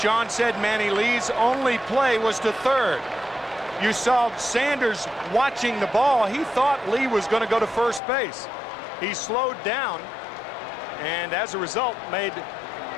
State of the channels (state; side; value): drops out; right; at 8.0 s